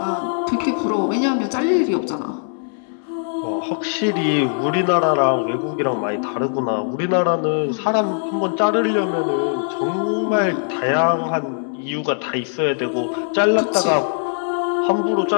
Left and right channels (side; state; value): right; silent; digital silence